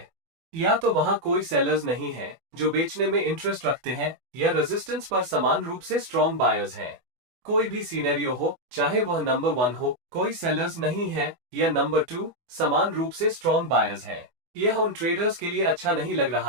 या तो वहां कोई सेलर्स नहीं है जो बेचने में इंटरेस्ट रखते हैं, या रेजिस्टेंस पर समान रूप से स्ट्रॉन्ग बायर्स हैं। कोई भी सिनेरियो हो, चाहे वह नंबर 1 हो, कोई सेलर्स नहीं है, या नंबर 2 समान रूप से स्ट्रॉन्ग बायर्स हैं। यह उन ट्रेडर्स के लिए अच्छा नहीं लग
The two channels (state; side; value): late; left; 24 ms